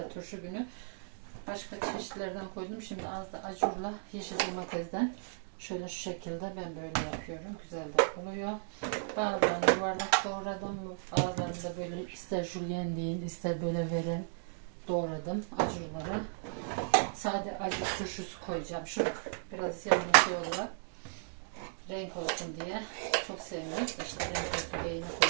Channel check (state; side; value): silent; left; digital silence